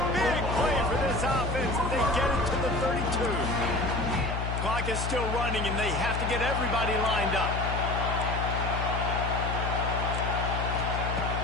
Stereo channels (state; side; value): noise; left; hum, 2 dB below the sound